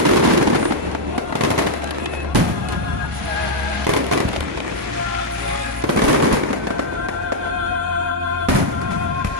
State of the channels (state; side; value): normal; both; correlation -0.03